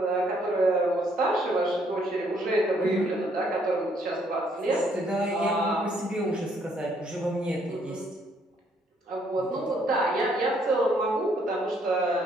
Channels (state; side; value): normal; both; correlation 0.68